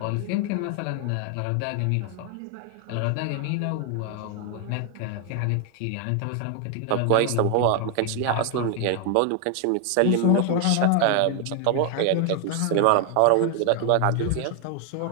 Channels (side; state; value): both; different; correlation 0.00